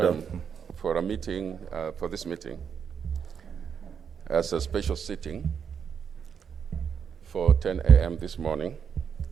for a meeting, for this meeting, as a special sitting for 10 a.m. this morning.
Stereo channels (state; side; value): quieter; left; 7.2 dB